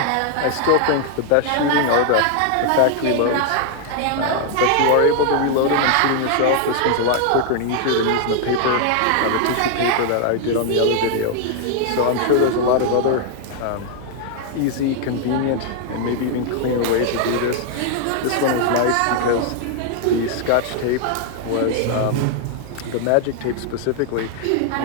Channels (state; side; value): different; both; correlation 0.00